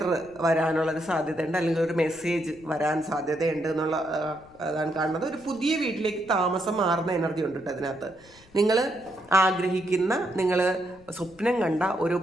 വരാനുള്ളൊരു സാധ്യതയുണ്ട്, അല്ലെങ്കിൽ ഒരു മെസ്സേജ് വരാൻ സാധ്യതയുണ്ട് എന്നുള്ള അതാണ് കാണുന്നത്. ഒരു പുതിയ വീട്ടിലേക്ക് താമസം മാറുന്ന എനർജി ഉണ്ട് കേട്ടോ അതിനകത്ത്. നിങ്ങൾ ആഗ്രഹിക്കുന്ന, നിങ്ങൾ സ്വപ്നം കണ്ട ഒരു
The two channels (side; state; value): left; noise; rumble, 26 dB below the sound